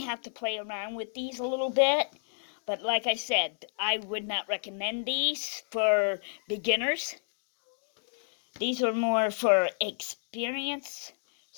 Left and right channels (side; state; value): right; silent; digital silence